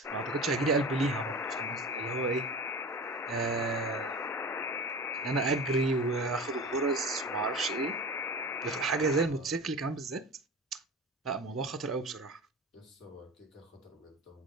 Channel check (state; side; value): normal; both; correlation 0.33